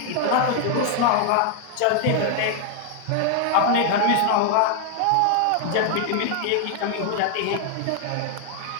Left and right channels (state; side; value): different; both; correlation 0.00